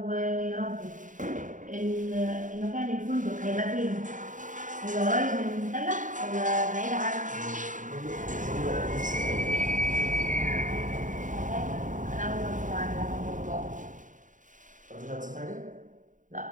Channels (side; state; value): left; late; 0.37 ms